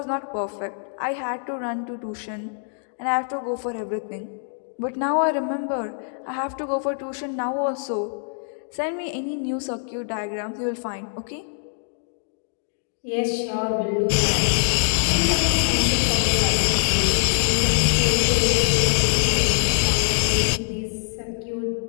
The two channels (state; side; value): silent; right; digital silence